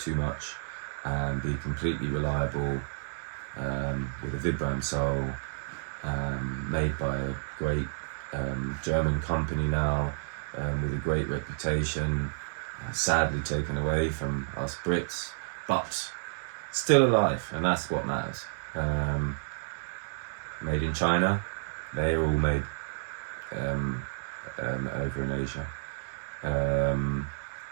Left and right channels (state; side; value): silent; left; digital silence